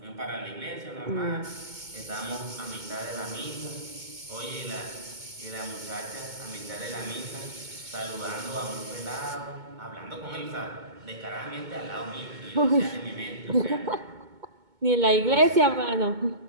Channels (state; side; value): late; left; 2.2 ms